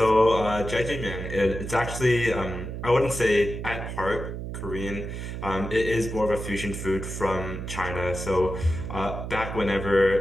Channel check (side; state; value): right; noise; hum, 6 dB below the sound